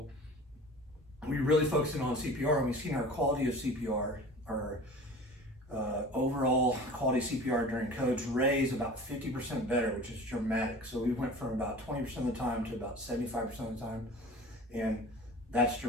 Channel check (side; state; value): both; normal; correlation 0.40